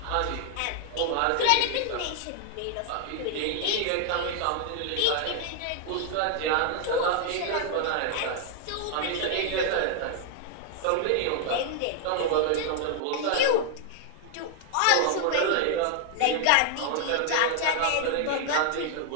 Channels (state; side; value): different; both; correlation 0.00